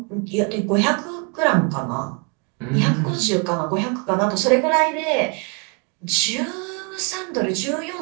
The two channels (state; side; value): quieter; left; 33.8 dB